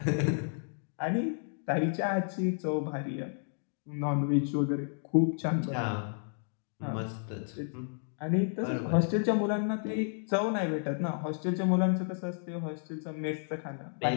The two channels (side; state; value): right; silent; digital silence